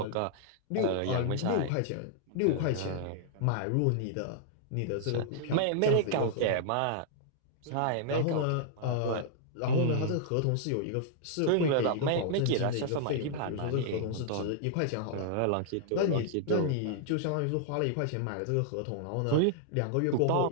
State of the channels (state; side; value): different; both; correlation -0.01